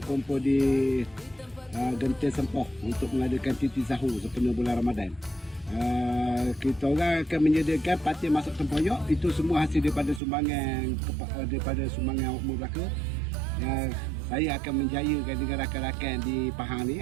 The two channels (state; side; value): drops out; left; at 10.2 s